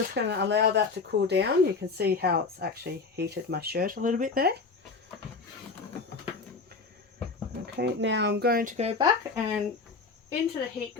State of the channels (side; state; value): right; quieter; 4.4 dB